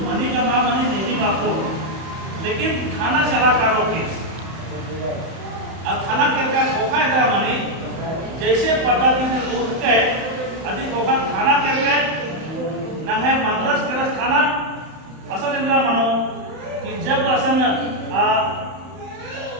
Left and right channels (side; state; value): left; late; 31 ms